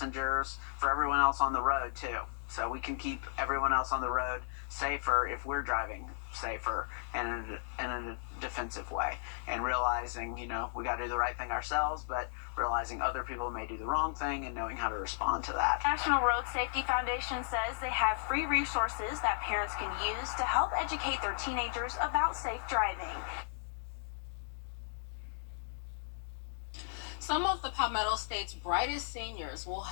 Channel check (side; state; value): right; silent; digital silence